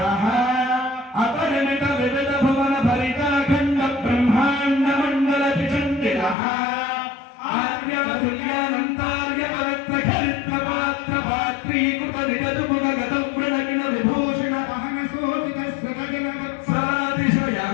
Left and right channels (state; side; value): drops out; right; at 6.4 s